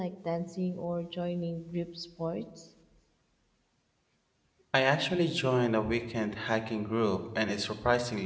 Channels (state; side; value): identical; both; correlation 1.00